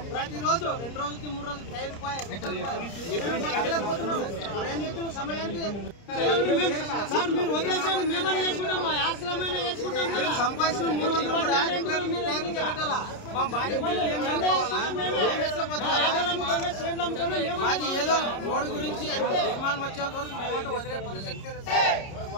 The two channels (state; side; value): late; right; 30 ms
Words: ప్రతిరోజు 2 రోజులకి 3 రోజులకి టైర్ సమయానికి సార్ మీరు వదిలేసాడు. మేమైనా చేసుకుంటాం, మా ఆశ్రమైనా చేసుకుంటాం. సంపాదించిన 300 కూడా మా భార్య మాకు ఏదో రోడ్డు గురించి నిర్మాణం వచ్చేంత వరకు మేమంటే వదిలే పరిస్థితి లేదు.